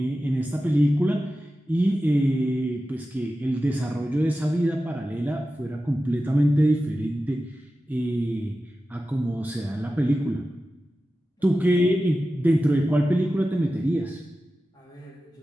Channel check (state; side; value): normal; both; correlation 0.94